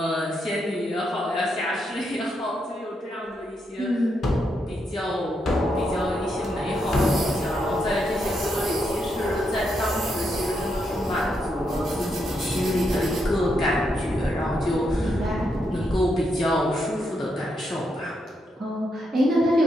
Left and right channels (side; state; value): both; normal; correlation 0.80